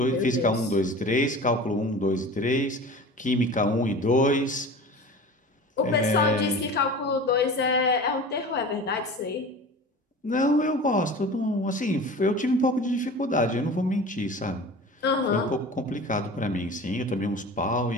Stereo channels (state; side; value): normal; both; correlation 0.37